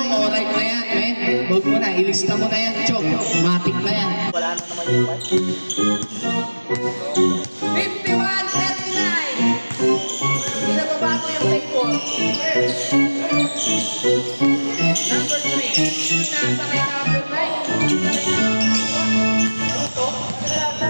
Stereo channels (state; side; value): inverted; both; correlation -1.00